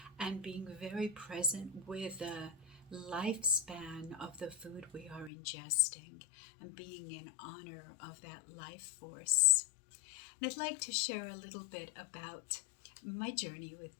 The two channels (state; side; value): drops out; right; at 5.3 s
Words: and being very present with the lifespan of the food we are ingesting, and being in honor of that life force. And I'd like to share a little bit about my journey with